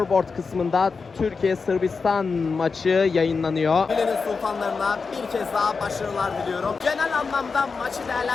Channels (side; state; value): right; quieter; 4.8 dB